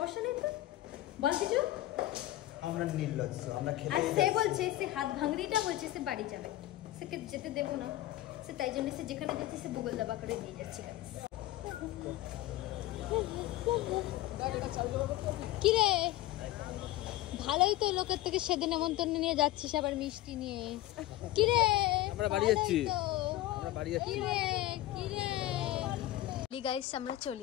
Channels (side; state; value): right; quieter; 15.2 dB